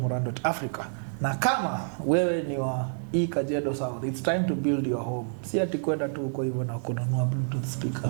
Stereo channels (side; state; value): left; silent; digital silence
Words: Na kama wewe ni wa Kajiado South, it's time to build your home. Si ati kwenda tu huko hivyo na kununua Bluetooth speaker.